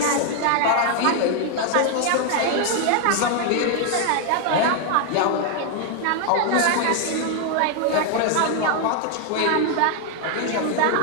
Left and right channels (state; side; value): different; both; correlation 0.00